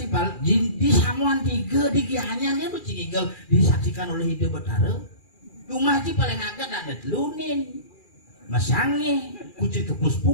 di samuan tiga di gianyarnya tuh cingigel disaksikan oleh hidup betara. Cuma sih paling agak ada telunin. Masangnya kucing kepus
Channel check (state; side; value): late; right; 2.4 ms